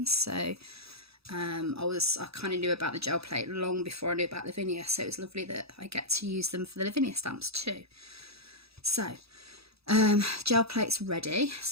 so I kind of knew about the gel plate long before I knew about Lavinia, so it's lovely that I get to use them for the Lavinia stamps too. So gel plate's ready.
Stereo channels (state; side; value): late; left; 0.77 ms